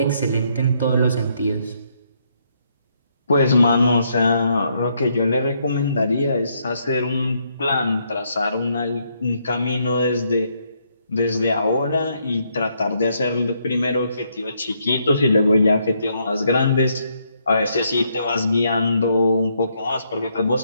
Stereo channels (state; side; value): inverted; both; correlation -0.74